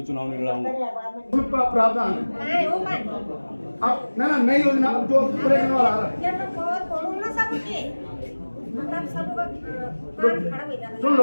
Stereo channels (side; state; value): both; inverted; correlation -1.00